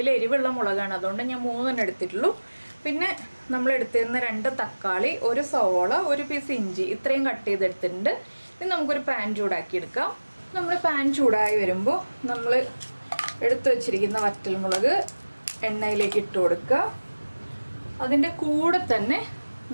എരിവുള്ള മുളകാണ്, അതുകൊണ്ട് ഞാൻ 3 എണ്ണം എടുത്തിട്ടുള്ളൂ. പിന്നെ നമ്മൾ എടുത്തിരുന്ന 2 തക്കാളി, ഒരു സവോള, ഒരു പീസ് ഇഞ്ചി, ഇത്രയും കട്ട് ചെയ്തെടുത്തിട്ടുണ്ട്. ഇനി നമുക്കൊരു പാൻ ചൂടാക്കി എടുക്കാം. നമ്മൾ പാൻ ചൂടായി വരുമ്പോൾ നമ്മൾ എടുത്തു വച്ചിരിക്കുന്ന വറ്റൽമുളക് എണ്ണയിലേക്ക് ഇട്ട് കൊടുക്കുക. അതിൻ്റെ കൂടെ തന്നെ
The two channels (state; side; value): inverted; both; correlation -1.00